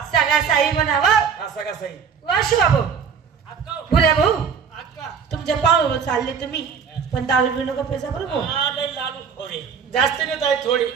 सगळा साई बनावा. हा सगळा सही. वा शिवा भाऊ, बुऱ्या भाऊ, तुमच्या पावलं चालले तुम्ही, पण दारू पिऊ नका पैसा बरं भाऊ. लाडू खोरे जास्त नाही ताई, थोडी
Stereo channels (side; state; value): left; quieter; 6.7 dB